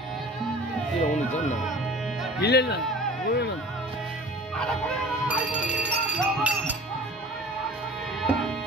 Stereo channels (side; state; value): both; normal; correlation 0.43